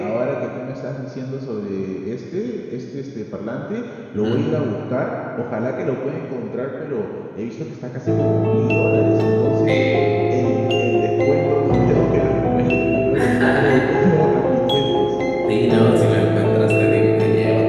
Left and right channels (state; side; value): identical; both; correlation 1.00